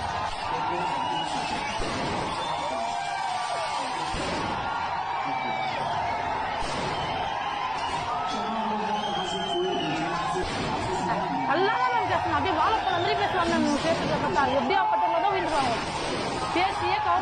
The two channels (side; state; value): both; identical; correlation 1.00